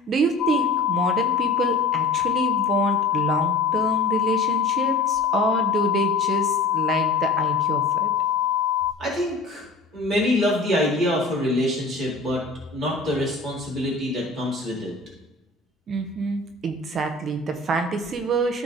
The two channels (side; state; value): right; quieter; 3.2 dB